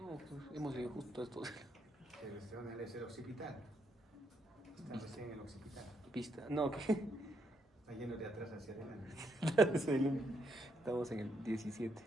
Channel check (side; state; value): both; normal; correlation 0.76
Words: pues hemos leído justo esto. Es el occipital. Está recién en el occipital. Pista. No, ¿qué? Está lleno de atrás hacia adelante. Estamos en el 17.